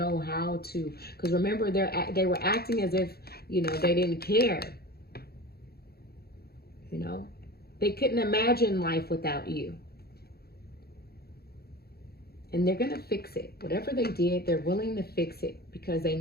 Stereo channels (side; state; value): right; late; 0.46 ms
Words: how to. Because remember, they were acting as if, you know, they didn't care. You know, they couldn't imagine life without you. And they're going to fix it. Whatever they did, they're willing to fix it, because they